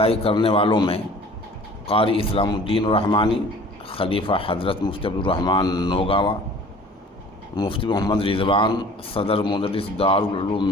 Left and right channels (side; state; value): both; normal; correlation 0.48